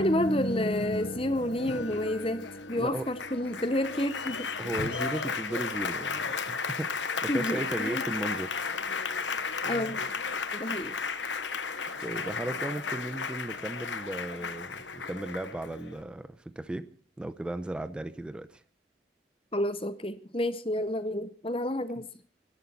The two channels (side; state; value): both; normal; correlation 0.54